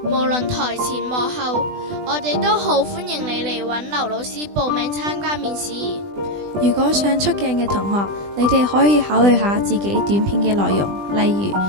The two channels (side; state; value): left; late; 20 ms